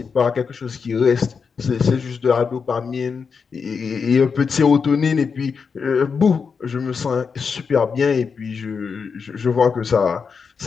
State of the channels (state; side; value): quieter; right; 5.7 dB